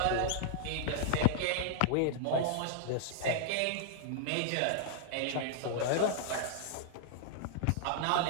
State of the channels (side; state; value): both; different; correlation -0.01